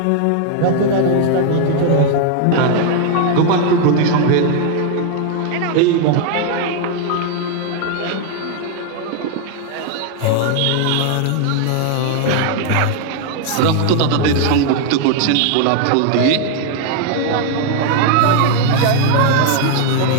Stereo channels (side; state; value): both; different; correlation 0.00